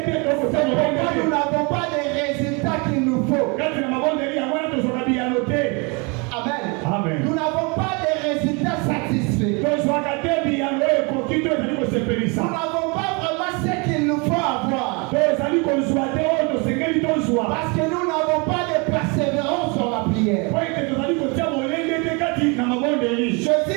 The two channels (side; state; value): left; quieter; 30.7 dB